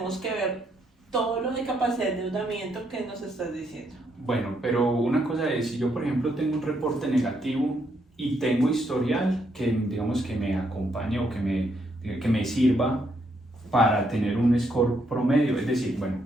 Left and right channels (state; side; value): normal; both; correlation 0.75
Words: que ver todo lo de capacidad de endeudamiento que nos estás diciendo. Bueno, pero una cosa es, si yo por ejemplo tengo un reporte negativo y tengo historial que digamos que me acompañe o que me sirva para tener un score promedio, es decir, bueno,